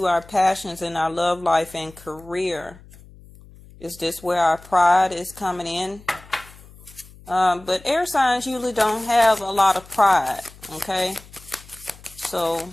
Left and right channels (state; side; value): noise; left; hum, 22 dB below the sound